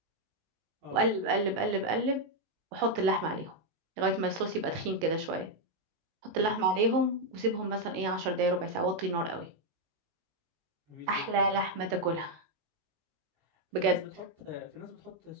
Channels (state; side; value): late; left; 19 ms